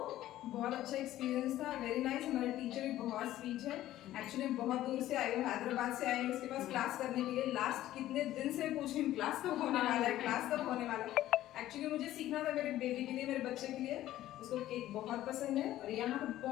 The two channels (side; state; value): right; quieter; 14.0 dB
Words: बहुत अच्छा एक्सपीरियंस था, वेरी नाइस। हमारे टीचर भी बहुत स्वीट है। एक्चुअली बहुत दूर से आई हूँ, हैदराबाद से आई हूँ उसके पास क्लास करने के लिए। लास्ट कितने दिन से पूछ रही हूँ क्लास कब होने वाला है, क्लास कब होने वाला है। एक्चुअली मुझे सीखना था मेरे बेबी के लिए, मेरे बच्चे के लिए। उसको केक बहुत पसंद है और यहाँ पर